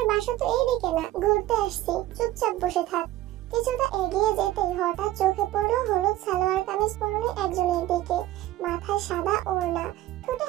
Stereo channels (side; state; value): left; quieter; 15.2 dB